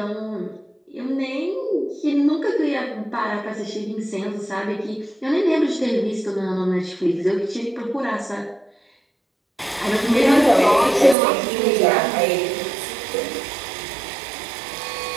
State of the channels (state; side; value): drops out; left; at 11.2 s